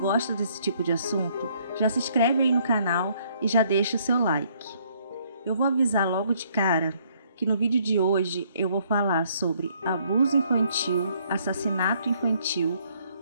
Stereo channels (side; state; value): both; inverted; correlation -0.66